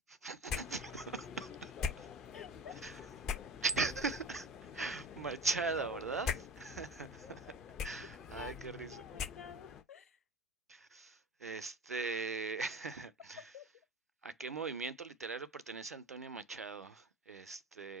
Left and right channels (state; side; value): normal; both; correlation 0.35